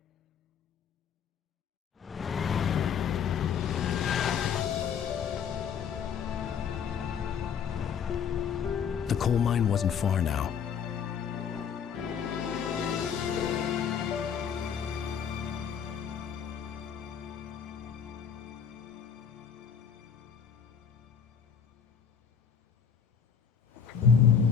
The coal mine wasn't far now.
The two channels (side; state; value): right; quieter; 7.3 dB